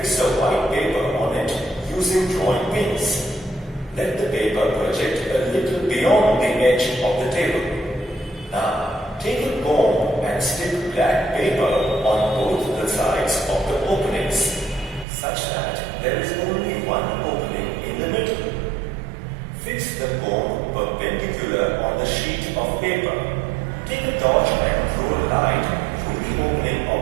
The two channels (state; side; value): drops out; left; at 15.1 s